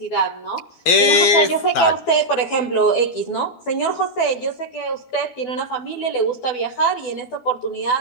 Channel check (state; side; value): late; right; 12 ms